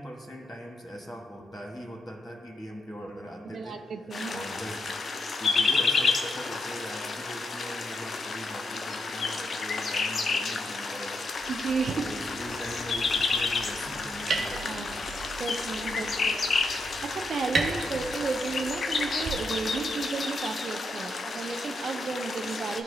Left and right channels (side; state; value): both; normal; correlation 0.81